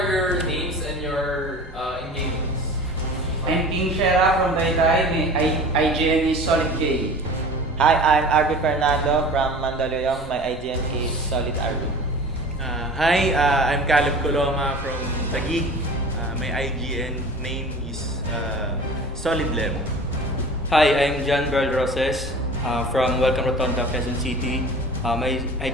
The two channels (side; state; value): both; normal; correlation 0.40